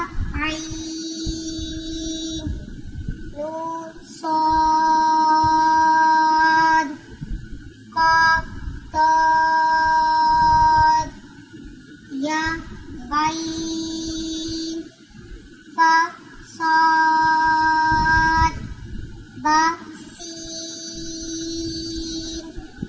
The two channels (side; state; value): both; identical; correlation 1.00